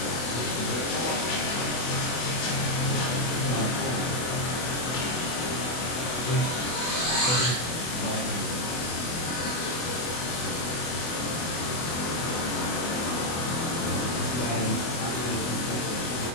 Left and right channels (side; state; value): right; late; 24 ms